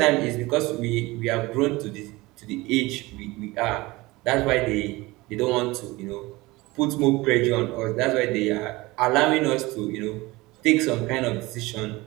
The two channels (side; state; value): left; quieter; 21.3 dB